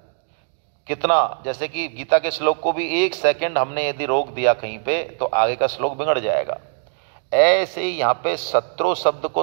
कितना, जैसे कि गीता के श्लोक को भी 1 सेकंड हमने यदि रोक दिया कहीं पे तो आगे का श्लोक बिगड़ जाएगा। ऐसे ही यहाँ पे शत्रु शब्द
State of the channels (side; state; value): left; silent; digital silence